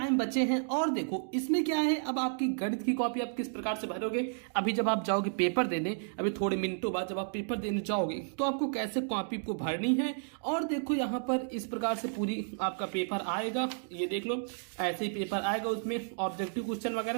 बचे हैं। और देखो इसमें क्या है, अब आपकी गणित की कॉपी आप किस प्रकार से भरोगे। अभी जब आप जाओगे पेपर देने, अभी थोड़े मिनटों बाद जब आप पेपर देने जाओगे तो आपको कैसे कॉपी को भरनी है। और देखो यहाँ पर इस प्रकार से पूरी आपका पेपर आएगा, ये देख लो ऐसे ही पेपर आएगा। उसमें ऑब्जेक्टिव क्वेश्चन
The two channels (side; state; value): left; silent; digital silence